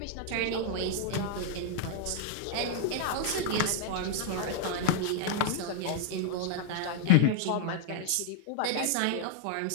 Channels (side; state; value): both; different; correlation -0.01